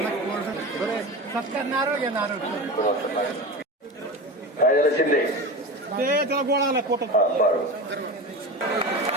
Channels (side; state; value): both; normal; correlation 0.26